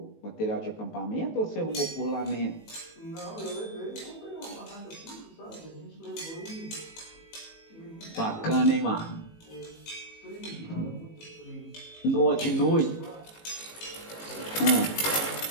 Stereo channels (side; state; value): right; late; 18 ms